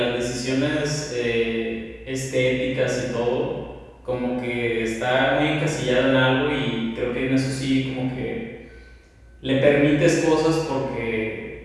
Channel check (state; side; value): identical; both; correlation 1.00